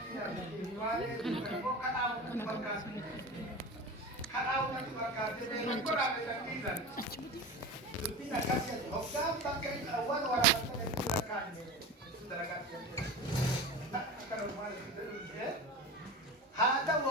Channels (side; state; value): both; normal; correlation 0.30